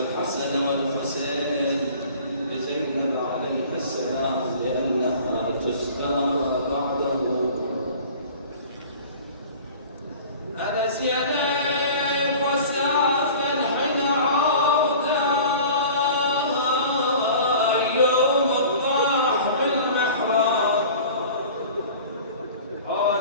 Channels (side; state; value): both; inverted; correlation -0.43